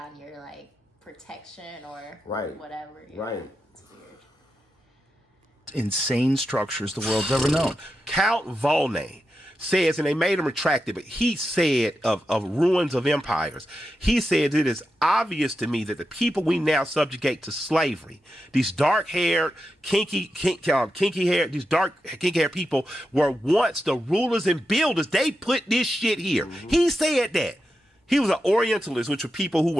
your, like, protection or whatever. Right. It's weird. Insane structures the world's ever known. Count Volney says, and they made him retract it, but he said of ruins of empires, he said, it is obvious to me that the people we now subjugate to slavery, these dark-haired, kinky-haired, these dark, kinky-haired people were once the rulers and builders. They put this shit here. He said that. He was an Orientalist, which were people who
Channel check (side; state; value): both; normal; correlation 0.88